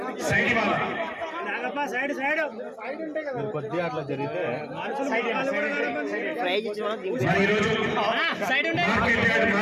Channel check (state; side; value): identical; both; correlation 1.00